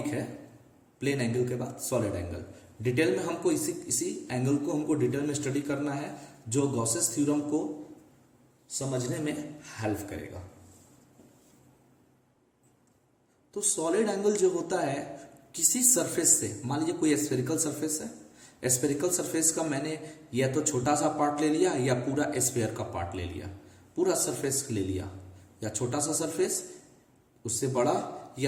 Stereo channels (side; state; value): both; identical; correlation 1.00